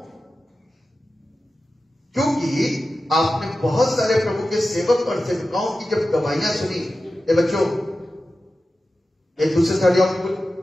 क्योंकि आपने बहुत सारे प्रभु के सेवक और सेविकाओं की जब गवाहियां सुनी। ये बच्चों, एक दूसरे से हट जाओ, बिल्कुल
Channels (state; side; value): normal; both; correlation 0.93